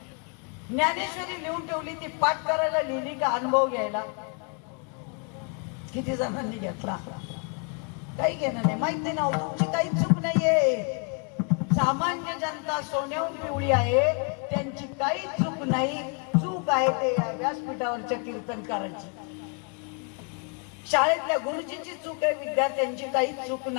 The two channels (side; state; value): right; quieter; 37.1 dB